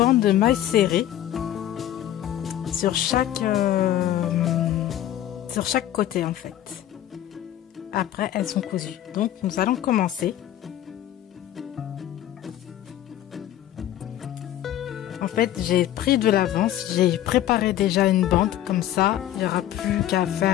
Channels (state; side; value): quieter; right; 12.2 dB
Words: de mailles serrées sur chaque côté en fait. Après elles sont cousues. Donc nous allons commencer. En fait j'ai pris de l'avance, j'ai préparé déjà une bande, comme ça il n'y aura plus qu'à